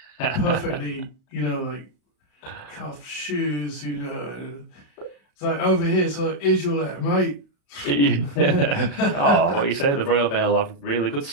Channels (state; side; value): late; right; 35 ms